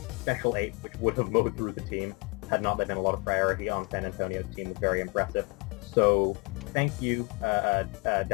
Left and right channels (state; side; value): quieter; right; 31.5 dB